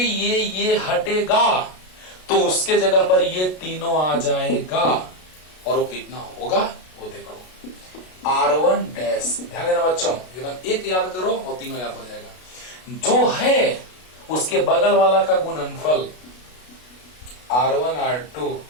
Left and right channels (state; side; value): late; right; 32 ms